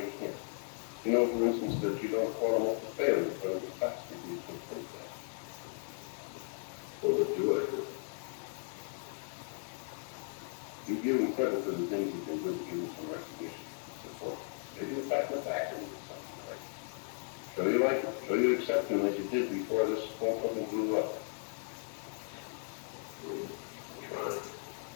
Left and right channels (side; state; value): right; silent; 54 dB below the other